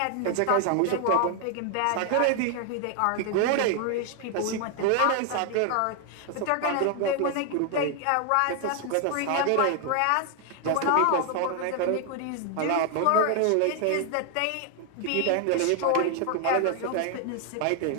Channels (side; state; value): both; different; correlation 0.00